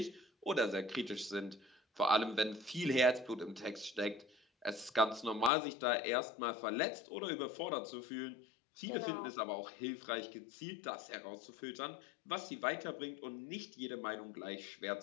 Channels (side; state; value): right; drops out; at 5.5 s